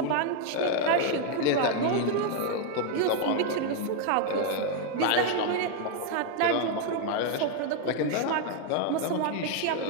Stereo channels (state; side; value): different; both; correlation 0.00